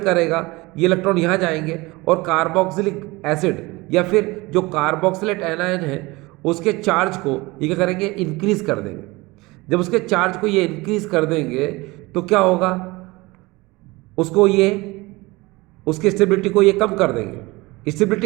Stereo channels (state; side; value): quieter; left; 22.5 dB